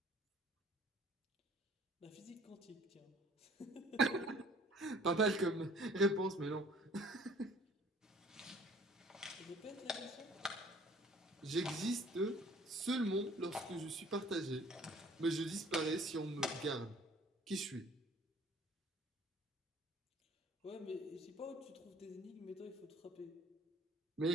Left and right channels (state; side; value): normal; both; correlation 0.53